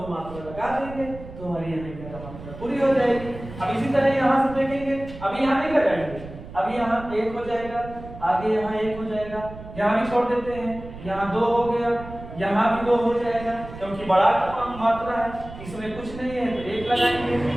मात्रा लगा देंगे तो हमारी यहाँ 11 मात्रा पूरी हो जाएगी। अब इसी तरह यहाँ से देखेंगे, अभी यहाँ नहीं लगाएंगे, अभी यहाँ 1 हो जाएगा, आगे यहाँ 1 हो जाएगा, यहाँ भी छोड़ देते हैं, यहाँ 2 हो गया, यहाँ भी 2 हो जाएगा क्योंकि बड़ा मात्रा है, इसमें कुछ नहीं है तो 1 लगाएंगे।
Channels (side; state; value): right; noise; rumble, 14 dB below the sound